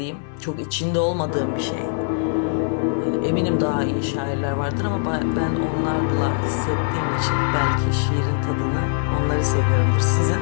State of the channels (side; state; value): right; silent; 64 dB below the other